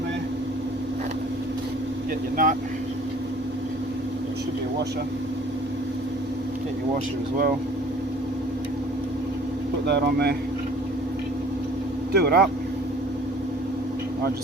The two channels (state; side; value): normal; both; correlation 0.52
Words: there. Get your nut. There should be a washer. Get your washer as well. Put that on there. Do it up. I